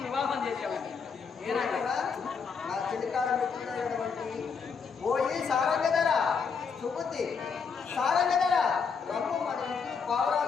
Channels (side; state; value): right; quieter; 5.8 dB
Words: వివాహం చేసేవాడు నా చిలికాల మిత్రుడైనటువంటి ఓయి సారంగధర సుబుద్ధి సారంగధర రమ్ము మన